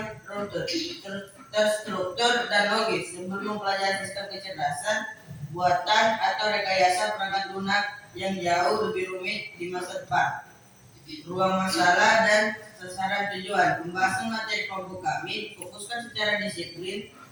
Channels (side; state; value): both; identical; correlation 1.00